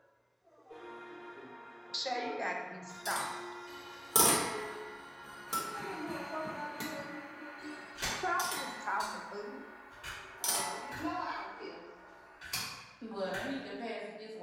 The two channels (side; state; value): both; identical; correlation 1.00